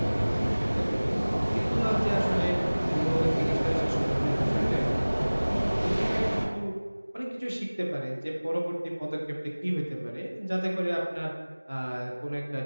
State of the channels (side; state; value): both; inverted; correlation -1.00